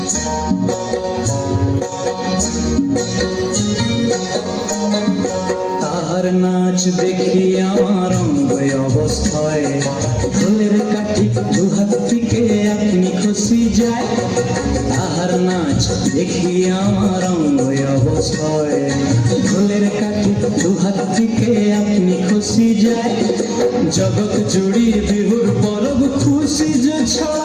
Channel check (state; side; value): identical; both; correlation 1.00